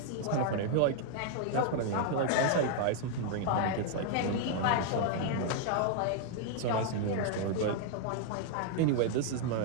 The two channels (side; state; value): both; different; correlation 0.00